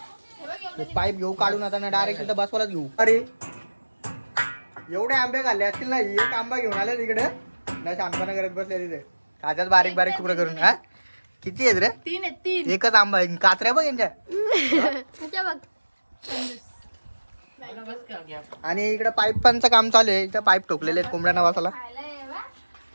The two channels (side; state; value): both; inverted; correlation -1.00